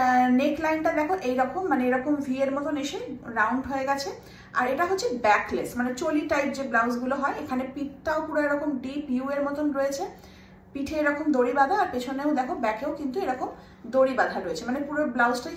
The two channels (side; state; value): both; identical; correlation 1.00